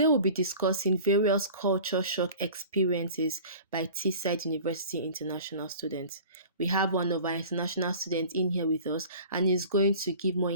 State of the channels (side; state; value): both; inverted; correlation -0.42